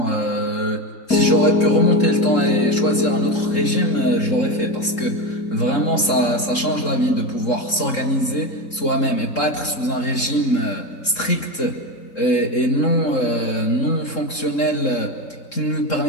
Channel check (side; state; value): right; late; 3.7 ms